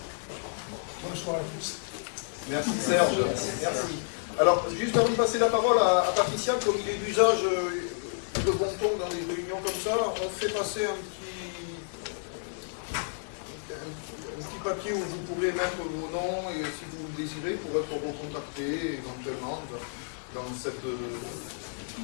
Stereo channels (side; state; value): right; silent; digital silence